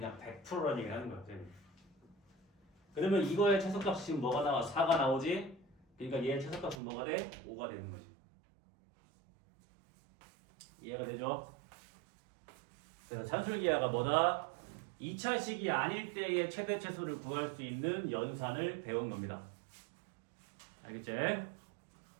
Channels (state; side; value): drops out; left; at 6.8 s